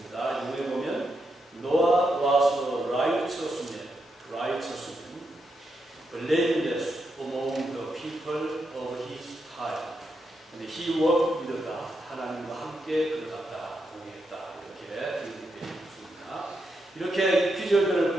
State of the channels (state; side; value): normal; both; correlation 0.83